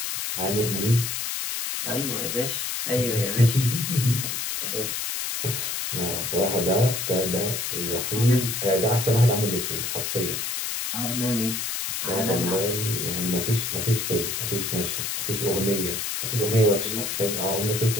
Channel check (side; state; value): left; noise; hiss, 2 dB below the sound